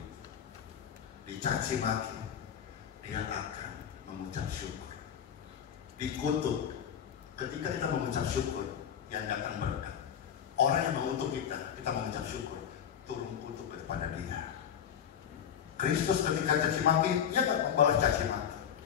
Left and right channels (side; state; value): right; quieter; 8.7 dB